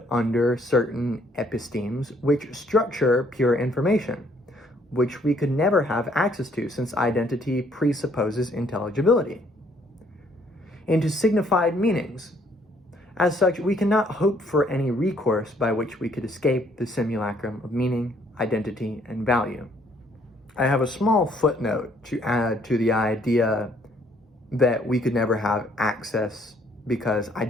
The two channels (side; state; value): both; normal; correlation 0.65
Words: under certain epistemes which structure pure information, which we could never have access to since identity presupposes intelligibility, into signified meanings. As such, we cannot hope for any recourse by which we could escape the simulacrum of meaning, identity, and value. I have a small footnote to add to the idea that we could never have access because